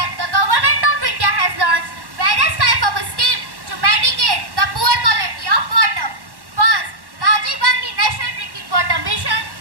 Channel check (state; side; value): late; left; 1.1 ms